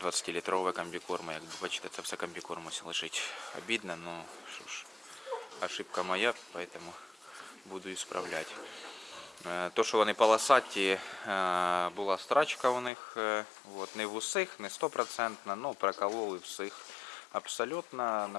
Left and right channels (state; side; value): drops out; right; at 12.9 s